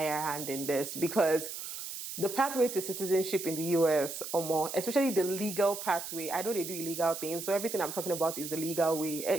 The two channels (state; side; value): noise; right; hiss, 8 dB below the sound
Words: hand in this because the pathway to citizenship in the US, or more, especially the legal pathway. I know they do illegal things, so everything I'm talking about is the legal way.